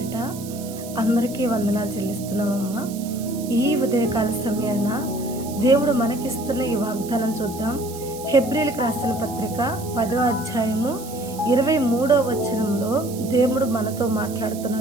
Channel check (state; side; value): noise; right; hiss, 15 dB below the sound